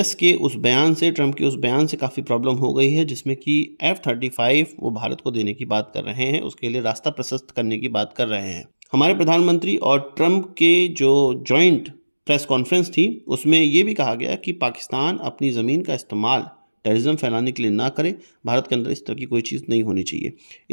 के उस बयान से, ट्रंप के उस बयान से काफ़ी प्रॉब्लम हो गई है जिसमें कि F-35 वो भारत को देने की बात कर रहे हैं, उसके लिए रास्ता प्रशस्त करने की बात कर रहे हैं। हमारे प्रधानमंत्री और ट्रंप के जो जॉइंट प्रेस कॉन्फ्रेंस थी उसमें ये भी कहा गया कि पाकिस्तान अपनी ज़मीन का इस्तेमाल टेररिज्म फैलाने के लिए ना करे। भारत के अंदर इस तरह की कोई चीज़ नहीं होनी चाहिए।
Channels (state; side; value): inverted; both; correlation -1.00